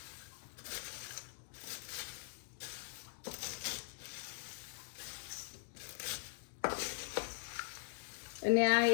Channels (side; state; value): right; silent; digital silence